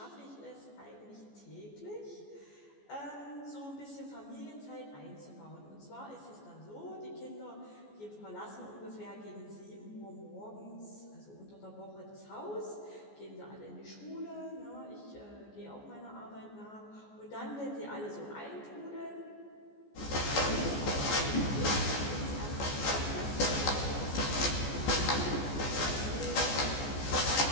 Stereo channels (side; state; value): right; late; 14 ms